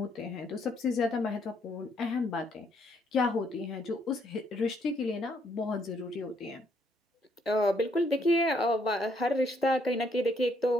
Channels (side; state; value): both; normal; correlation 0.71